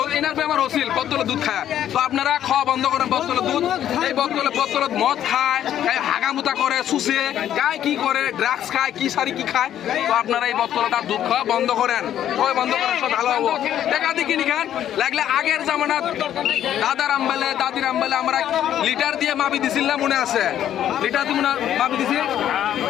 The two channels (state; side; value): quieter; right; 10.9 dB